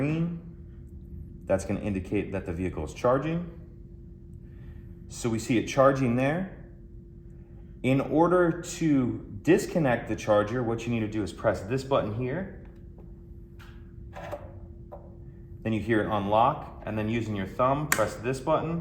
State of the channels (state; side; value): identical; both; correlation 1.00